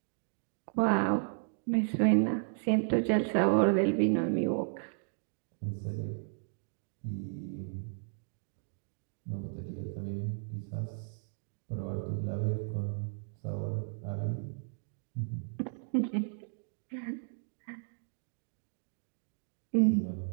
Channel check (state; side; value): silent; left; digital silence